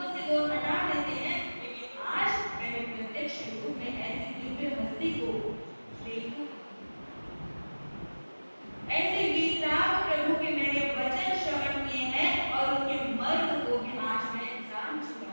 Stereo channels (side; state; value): both; inverted; correlation -1.00